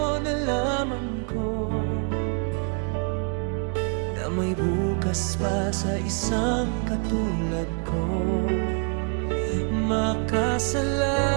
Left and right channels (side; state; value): left; quieter; 39.8 dB